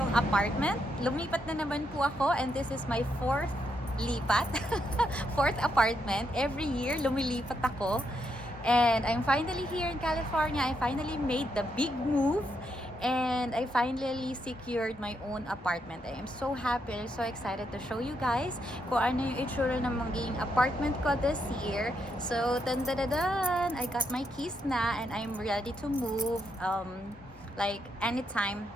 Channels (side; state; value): both; normal; correlation 0.79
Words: apartment. Lumipat na naman po ako and this is my fourth lipat. Fourth apartment. Every year lumilipat ako. And I'm finally here in California. I finally made the big move. And I finally secured my own apartment. I am so happy and so excited to show you guys kung ano yung itsura ng magiging apartment ko this year. So, dun dun dun dun! I got my keys na and I'm ready to move like anytime